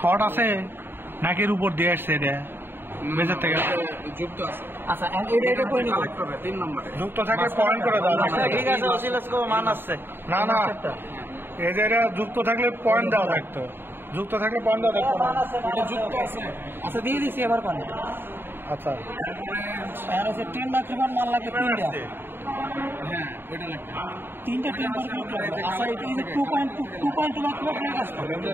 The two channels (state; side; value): late; left; 0.10 ms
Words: শর্ট আছে নাকি এর উপর দিয়ে আসছে এটা বেজর থেকে যুক্ত আছে আচ্ছা এটা কই নিব 3 নম্বরে যুক্ত থাকে পয়েন্ট করে দাও ঠিক আছে অসিলোস্কোপ মান আছে না না এই যে এটা যুক্ত থাকলে পয়েন্ট দেওয়া থাকতো যুক্ত থাকলে পয়েন্ট দেওয়া থাকতো না এটা যুক্ত আছে আচ্ছা দিয়ে দিছি এবার কোন আচ্ছা আর আছে 10 লাখ টাকার মাল লাগে তিনটা হ্যাঁ ওইটা লাগবে তিনটা 10 লাখ টাকা আচ্ছা এটা 2.2 লাখ টাকা কাজ করে